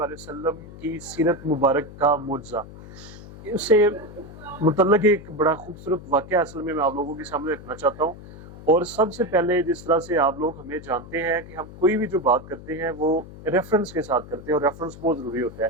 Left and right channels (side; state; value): left; noise; hum, 16 dB below the sound